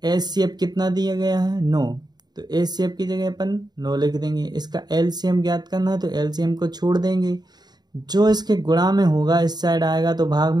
HCF कितना दिया गया है 9, तो HCF की जगह अपन 9 लिख देंगे। इसका LCM ज्ञात करना है तो LCM को छोड़ देंगे, जो इसके गुणा में होगा इस साइड आएगा तो भाग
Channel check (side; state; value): left; late; 0.20 ms